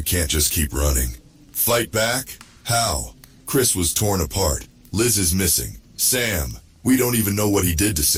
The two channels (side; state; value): both; identical; correlation 1.00